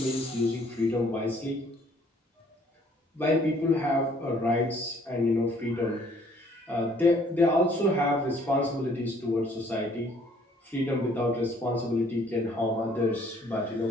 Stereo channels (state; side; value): normal; both; correlation 0.60